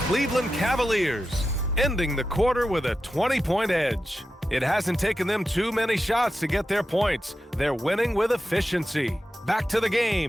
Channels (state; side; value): normal; both; correlation 0.91